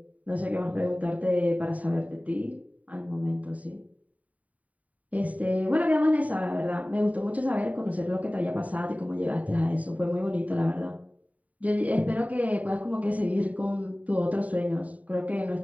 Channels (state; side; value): late; left; 0.070 ms